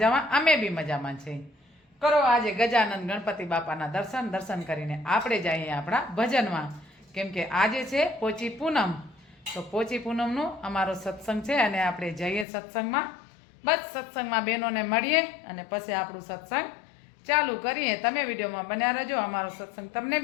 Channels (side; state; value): right; drops out; at 12.5 s